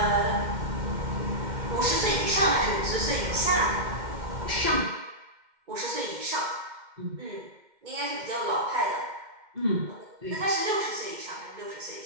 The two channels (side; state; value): left; late; 2.2 ms